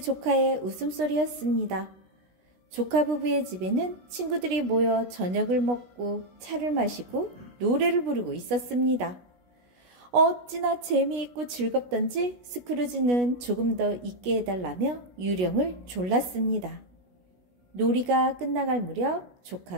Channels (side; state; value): left; late; 16 ms